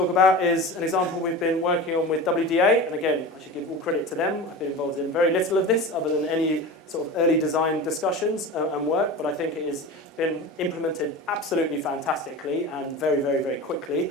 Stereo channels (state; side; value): normal; both; correlation 0.30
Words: about is an example we've been working on with WDA. And again, I should give all credit to them. I've been involved in very little of this other than any sort of early design discussions and work, but I think it has been implemented absolutely fantastically and very, very, very